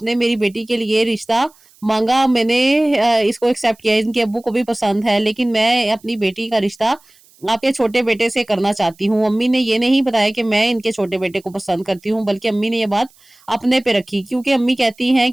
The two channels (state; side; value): noise; right; hiss, 30 dB below the sound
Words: मेरी बेटी के लिए रिश्ता माँगा, मैंने इसको एक्सेप्ट किया, इनके अब्बू को भी पसंद है, लेकिन मैं अपनी बेटी का रिश्ता आपके छोटे बेटे से करना चाहती हूँ। अम्मी ने ये नहीं बताया कि मैं इनके छोटे बेटे को पसंद करती हूँ, बल्कि अम्मी ने ये बात अपने पे रखी, क्योंकि अम्मी कहती हैं